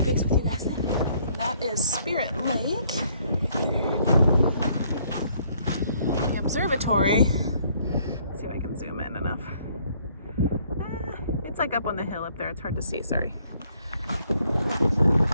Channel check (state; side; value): inverted; both; correlation -0.65